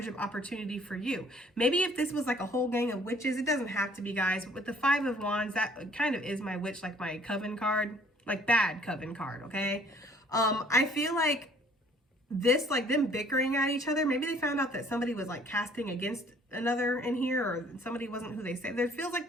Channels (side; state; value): both; normal; correlation 0.57